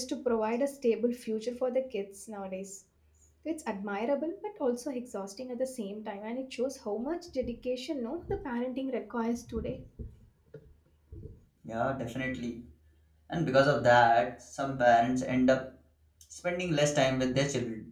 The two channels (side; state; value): both; identical; correlation 1.00